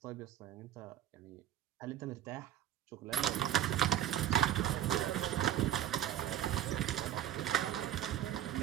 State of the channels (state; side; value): quieter; left; 11.3 dB